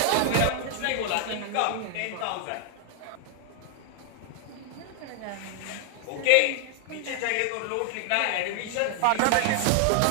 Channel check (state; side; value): different; both; correlation 0.00